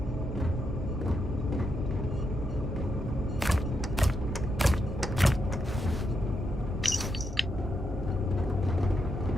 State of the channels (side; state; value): both; normal; correlation 0.82